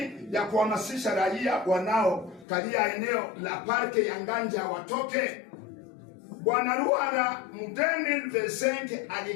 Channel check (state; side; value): drops out; right; at 2.5 s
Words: ya kuhamasisha raia wanaokalia eneo la parke ya Nganja watoke. Bwana Ruhara Mudeni Vesenke